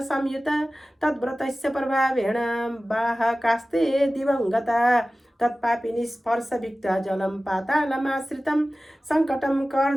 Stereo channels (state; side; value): normal; both; correlation 0.96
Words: संयुता तद्व्रतस्य प्रभावेण बाहकास्ते दिवङ्गता तत्पापिनी स्पर्शविक्ता जलं पातालमाश्रितं सङ्कटं